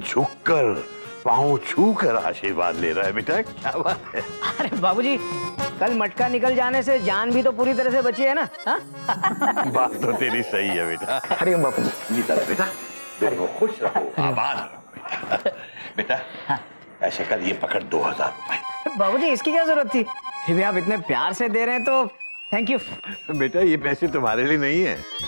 पांव छू कर आशीर्वाद ले रहा है बेटा, क्या बात है। अरे बाबूजी, कल मटका निकल जाने से जान भी तो पूरी तरह से बची है ना? हाँ? बात तो तेरी सही है बेटा। अरे बापू जीता रहे बेटा, दोनों खुश रहो, आबाद रहो बेटा। बेटा ऐसे कर, ये पकड़ 2000 रुपए। बाबूजी, इसकी क्या जरूरत थी? फिर भी आप इतने प्यार से दे रहे हैं तो थैंक यू। बेटा ये पैसे तुम्हारे लिए नहीं है।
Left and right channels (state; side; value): inverted; both; correlation -1.00